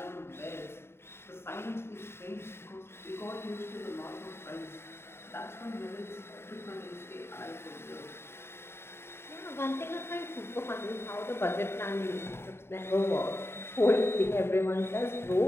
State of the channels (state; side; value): late; right; 0.12 ms